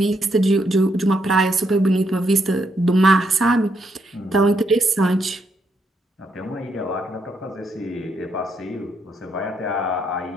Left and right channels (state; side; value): normal; both; correlation 0.76